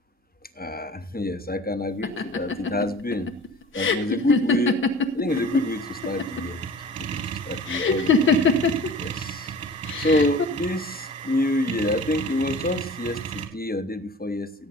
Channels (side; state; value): both; normal; correlation 0.42